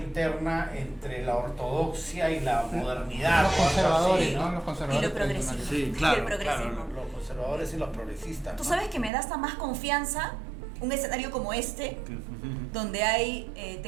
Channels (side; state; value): left; drops out; at 9.1 s